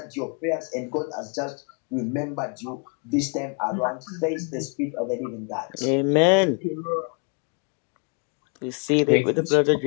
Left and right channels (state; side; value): quieter; right; 38.0 dB